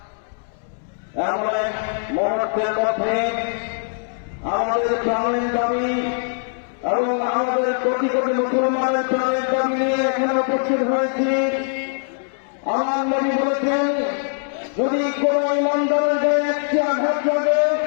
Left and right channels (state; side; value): silent; right; 64 dB below the other